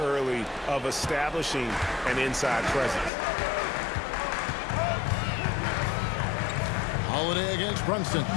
of establishing an inside presence. Holiday against Brunson.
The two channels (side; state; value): right; drops out; at 3.1 s